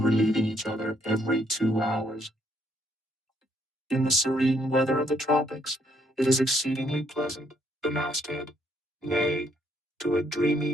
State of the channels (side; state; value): both; normal; correlation 0.71